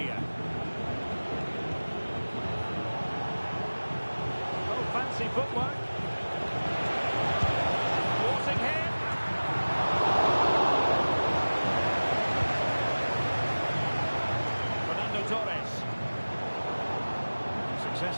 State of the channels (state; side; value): inverted; both; correlation -1.00